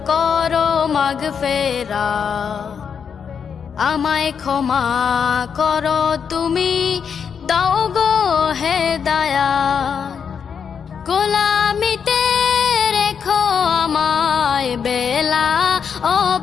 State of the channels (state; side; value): quieter; right; 6.9 dB